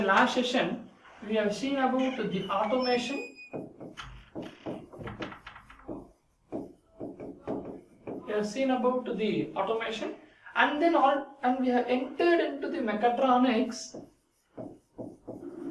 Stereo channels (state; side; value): identical; both; correlation 1.00